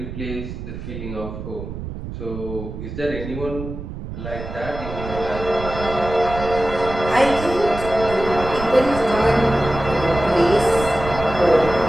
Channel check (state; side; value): noise; right; rumble, 9 dB below the sound